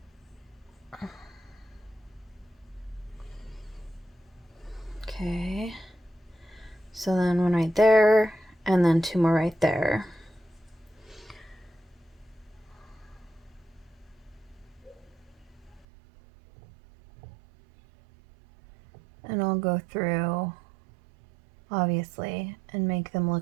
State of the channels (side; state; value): left; drops out; at 15.9 s